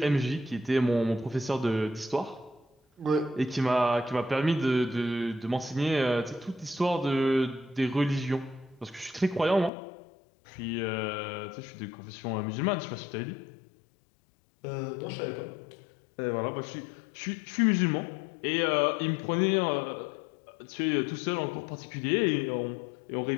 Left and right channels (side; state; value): right; drops out; at 9.7 s